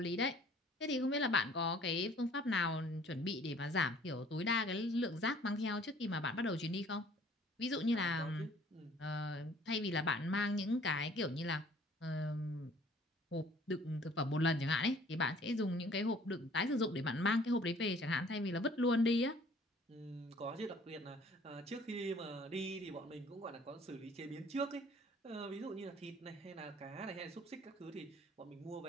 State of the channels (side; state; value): both; normal; correlation 0.55